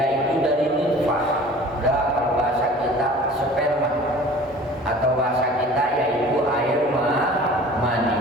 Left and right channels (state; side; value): normal; both; correlation 0.44